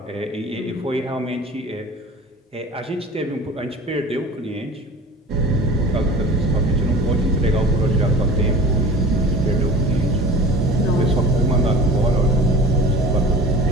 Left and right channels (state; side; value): normal; both; correlation 0.40